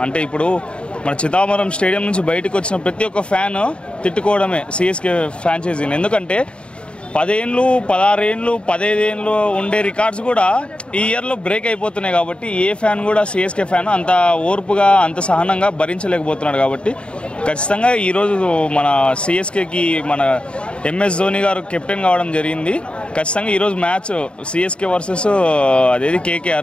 అంటే ఇప్పుడు మన చిదావరం స్టేడియం నుంచి బయటకు వచ్చిన ప్రతి ఒక్క ఫ్యాన్ తిట్టుకోవడమే సిఎస్కే ఫ్రాంచైజీని. ఎందుకంటే 10 ఏళ్ళు 16 ఏళ్ళు 15 ఏళ్ళు ఉండే రికార్డ్స్ కూడా ఈ ఇయర్లో బ్రేక్ అయిపోతున్నాయి. కాబట్టి ఏ ఫ్యాన్ కూడా సిఎస్కే ఫ్యాన్ అంత ఓర్పుగా అంత సహనంగా భరించలేకపోతున్నాడు. కాబట్టి ఖచ్చితంగా ఈరోజు మన సిఎస్కేకి మన ఎంఎస్ ధోని గారు కెప్టెన్ కావడం జరిగింది. ఖచ్చితంగా ఈరోజు మ్యాచ్ సిఎస్కే వర్సెస్ అదేది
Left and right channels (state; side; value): late; right; 0.055 ms